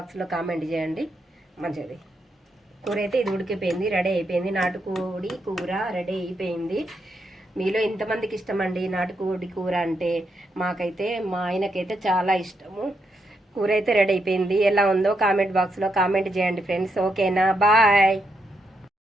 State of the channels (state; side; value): normal; both; correlation 0.81